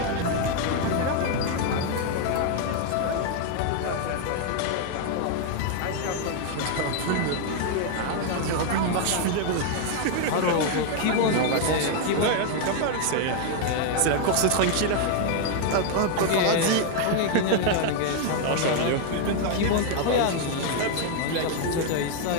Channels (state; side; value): different; both; correlation 0.00